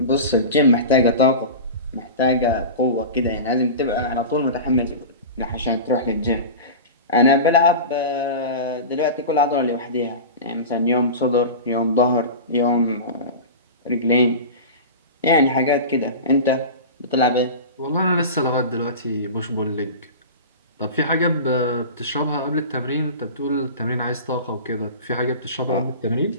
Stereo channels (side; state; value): both; inverted; correlation -0.30